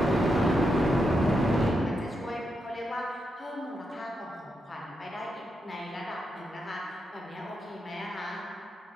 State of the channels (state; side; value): normal; both; correlation 0.84